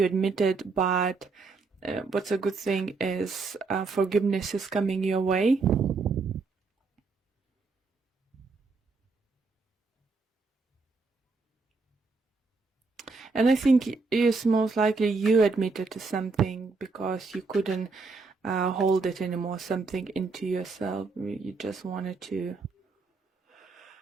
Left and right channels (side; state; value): left; quieter; 4.2 dB